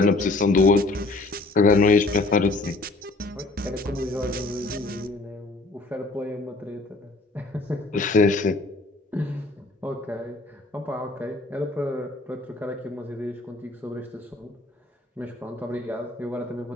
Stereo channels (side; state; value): right; quieter; 3.0 dB